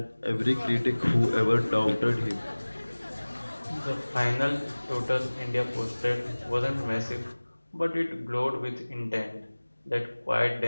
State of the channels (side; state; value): both; inverted; correlation -1.00